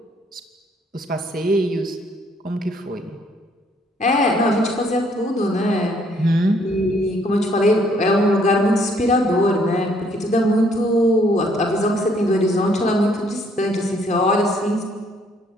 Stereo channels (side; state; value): both; normal; correlation 0.66